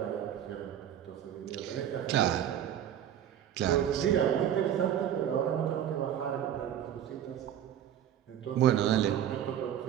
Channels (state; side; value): quieter; left; 10.2 dB